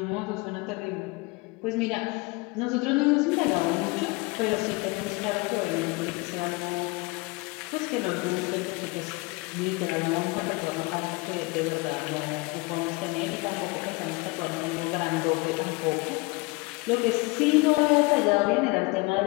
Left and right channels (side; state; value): right; quieter; 25.6 dB